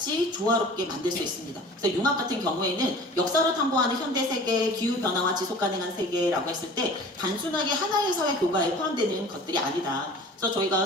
조화롭게 만들 수 있습니다. 그래서 융합 같은 경우에는 역사로 탐구하는 현대 세계, 기후 변화와 지속 가능한 세계라고 했을 때 단순하게 하나의 사회 교과에 포함되는 것들이 아니다. 그래서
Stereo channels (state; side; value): normal; both; correlation 0.43